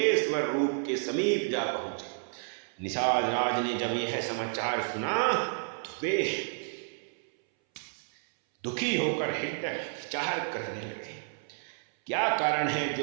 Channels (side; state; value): left; silent; 57 dB below the other